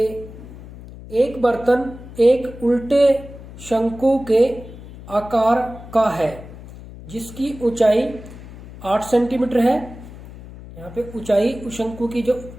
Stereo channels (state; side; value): noise; left; hum, 15 dB below the sound